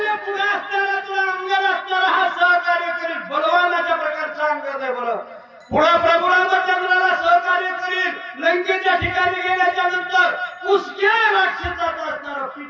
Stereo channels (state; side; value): identical; both; correlation 1.00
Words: पुढे असणारा तुला अंगद असणारा हा सहकार्य करील, बलवानाच्या प्रकारचा अंगद आहे बरं. पुढे प्रभू रामचंद्राला सहकार्य करील, लंकेच्या ठिकाणी गेल्याच्या नंतर पुसक्या राक्षसाचा असणारा